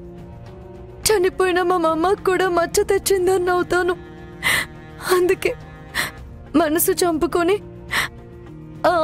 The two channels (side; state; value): both; identical; correlation 1.00